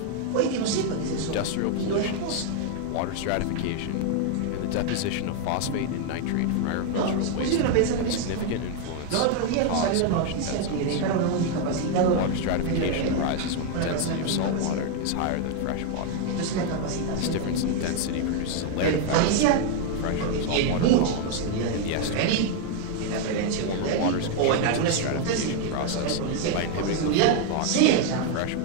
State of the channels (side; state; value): both; different; correlation 0.01